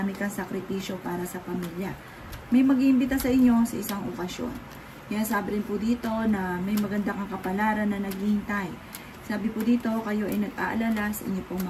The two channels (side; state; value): both; identical; correlation 1.00